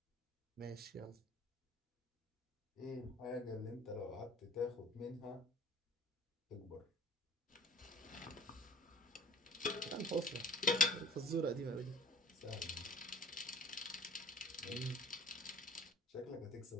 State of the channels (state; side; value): normal; both; correlation 0.45